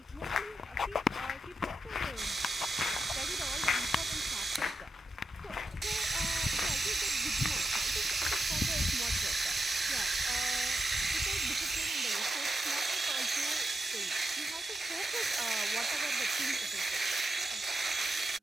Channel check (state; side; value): normal; both; correlation 0.86